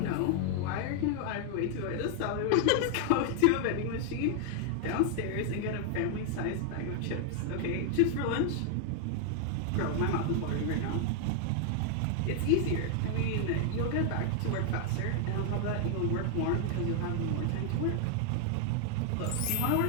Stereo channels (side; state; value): both; different; correlation 0.00